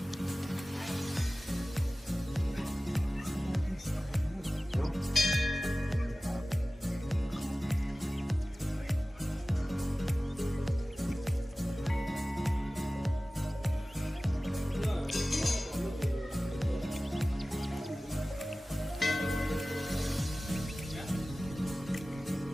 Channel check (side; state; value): both; normal; correlation 0.97